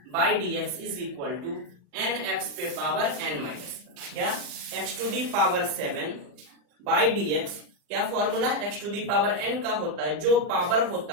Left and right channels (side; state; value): left; late; 40 ms